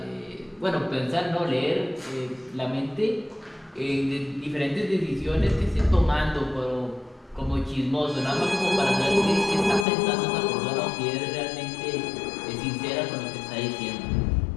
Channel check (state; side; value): drops out; right; at 9.9 s